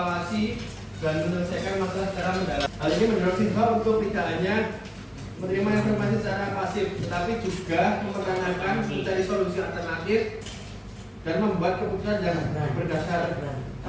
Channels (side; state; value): both; identical; correlation 1.00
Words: dan menyelesaikan masalah secara mendalam. Hal ini mendorong siswa untuk tidak hanya menerima informasi secara pasif, tetapi juga mempertanyakan, mencari solusi alternatif, dan membuat keputusan yang berdasar